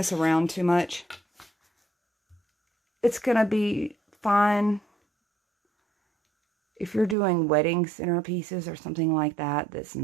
around too much, it's going to be fine. If you're doing wedding centerpieces or something like that, that's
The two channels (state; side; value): drops out; left; at 7.2 s